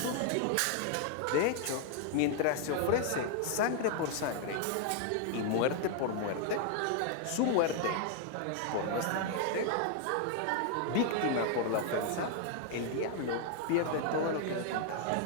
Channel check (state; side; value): different; both; correlation 0.00